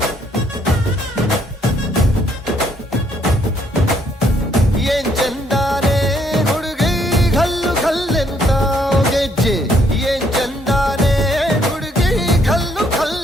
ಏನ್ ಚಂದಾನೆ ಹುಡುಗಿ ಘಲ್ಲು ಘಲ್ಲೆನು ತಾವು ಗೆಜ್ಜೆ ಏನ್ ಚಂದಾನೆ ಹುಡುಗಿ ಘಲ್ಲು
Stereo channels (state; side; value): normal; both; correlation 0.69